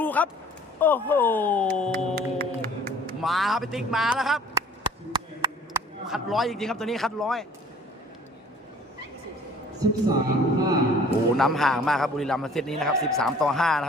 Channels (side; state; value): both; normal; correlation 0.52